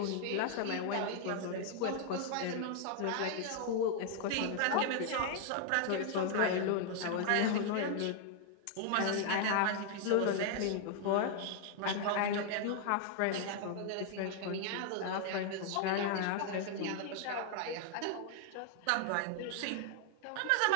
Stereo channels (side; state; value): both; different; correlation 0.00